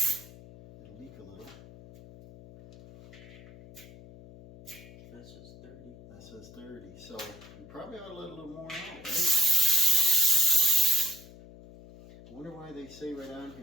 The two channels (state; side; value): noise; left; hum, 18 dB below the sound